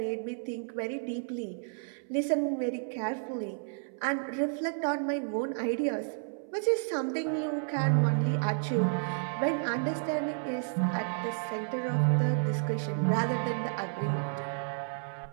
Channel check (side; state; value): left; silent; 57 dB below the other